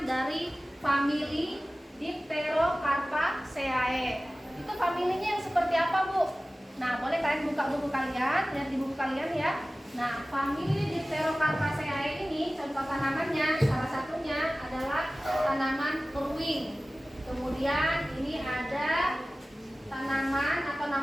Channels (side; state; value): both; normal; correlation 0.97